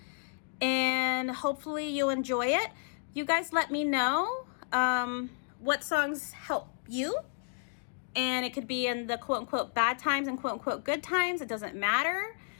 and hopefully you'll enjoy it. You guys let me know what songs help you. And it could be in the quote unquote bad times and quote unquote good times. It doesn't matter.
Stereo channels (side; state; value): right; silent; digital silence